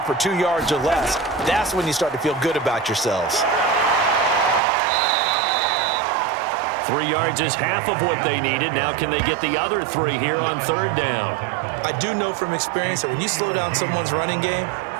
2 yards or less. That's when you start to feel good about yourselves. 3 yards is half of what they needed. Now can they get the other 3 here on 3rd down? I do know from experience that when you slow down someone's running game,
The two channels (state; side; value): drops out; left; at 4.6 s